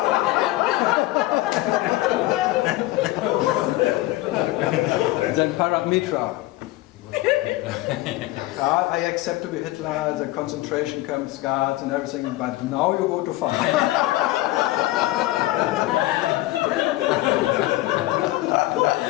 Then Paramitra. I accept to be Hitler, the concentration camps, guards and everything, but now you go to fun.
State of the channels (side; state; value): right; quieter; 17.7 dB